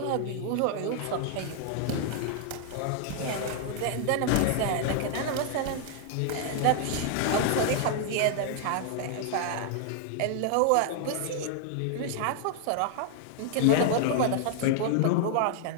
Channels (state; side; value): different; both; correlation 0.00